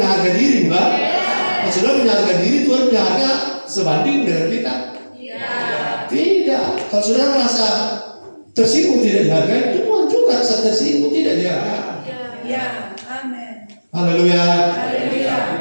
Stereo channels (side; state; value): both; inverted; correlation -1.00